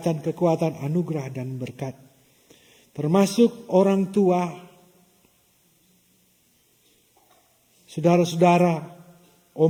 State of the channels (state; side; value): identical; both; correlation 1.00